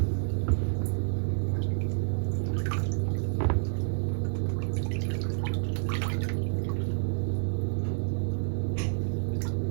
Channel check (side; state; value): left; silent; digital silence